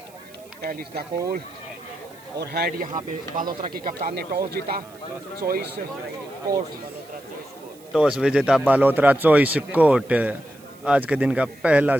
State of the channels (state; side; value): noise; right; hiss, 26 dB below the sound